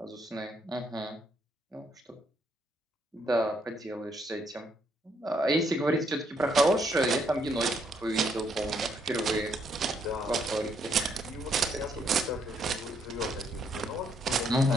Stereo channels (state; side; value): normal; both; correlation 0.72